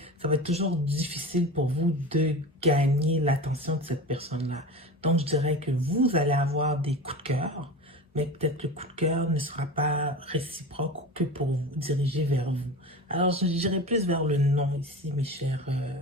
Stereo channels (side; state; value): both; normal; correlation 0.31